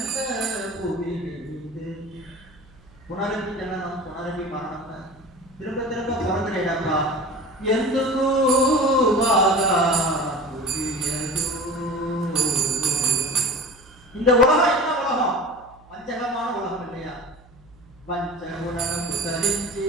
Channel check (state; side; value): noise; right; hum, 26 dB below the sound